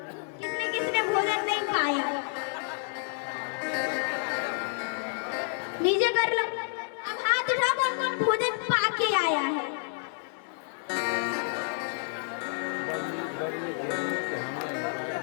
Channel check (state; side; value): silent; right; digital silence